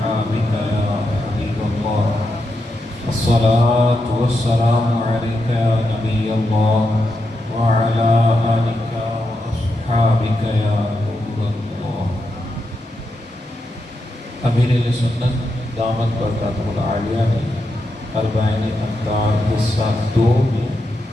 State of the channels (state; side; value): normal; both; correlation 0.85